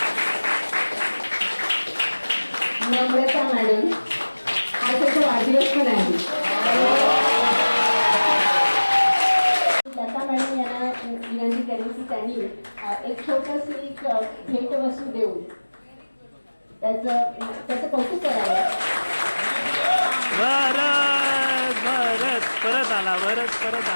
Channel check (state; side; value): inverted; both; correlation -1.00